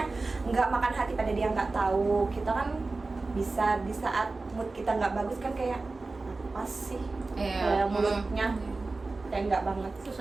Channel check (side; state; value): left; quieter; 3.5 dB